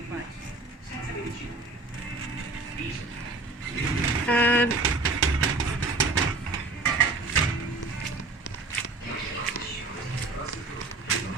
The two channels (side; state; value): left; quieter; 3.5 dB